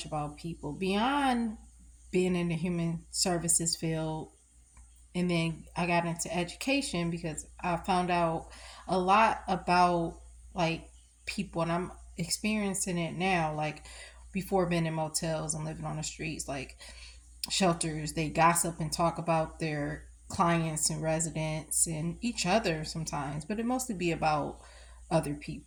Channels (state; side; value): identical; both; correlation 1.00